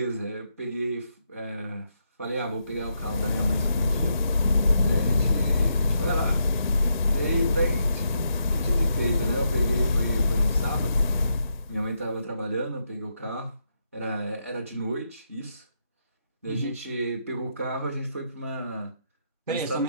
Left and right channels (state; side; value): inverted; both; correlation -0.80